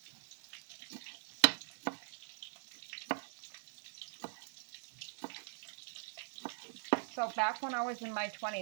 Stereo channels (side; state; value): left; silent; digital silence